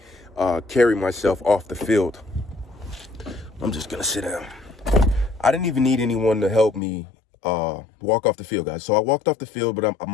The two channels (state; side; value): drops out; right; at 6.8 s